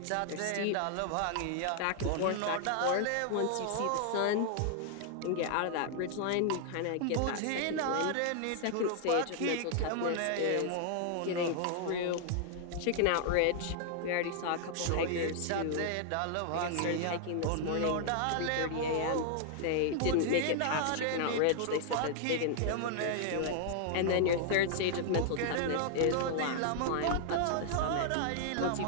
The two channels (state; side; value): different; both; correlation 0.00